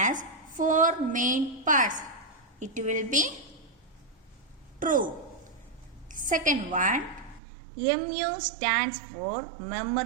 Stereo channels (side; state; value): left; drops out; at 7.4 s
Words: 4 main parts. It will be true. Second one, MU stands for